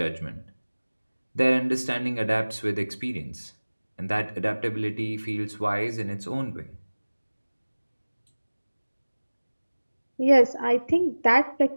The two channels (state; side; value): inverted; both; correlation -1.00